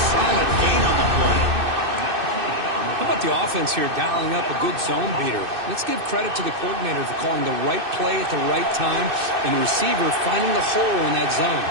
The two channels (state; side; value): late; left; 2.6 ms